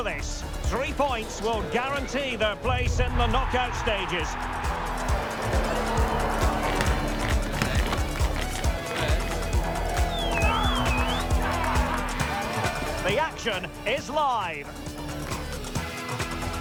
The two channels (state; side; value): identical; both; correlation 1.00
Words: this. 3 points will guarantee their place in the knockout stages. The action is live.